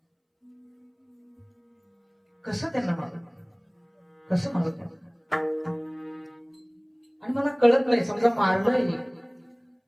कसं त्यांना मारू, कसं मारू त्यांना? आणि मला कळत नाही, समजा मारलंय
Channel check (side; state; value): both; identical; correlation 1.00